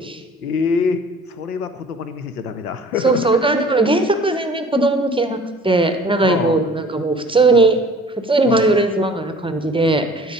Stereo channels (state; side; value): normal; both; correlation 0.49